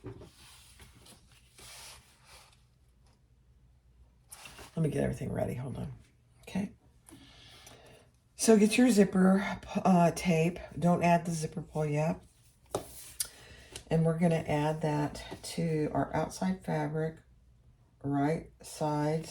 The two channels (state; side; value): identical; both; correlation 1.00